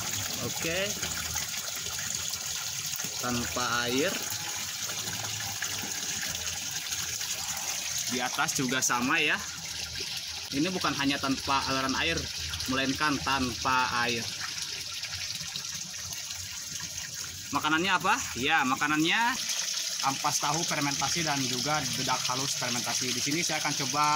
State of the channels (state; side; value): identical; both; correlation 1.00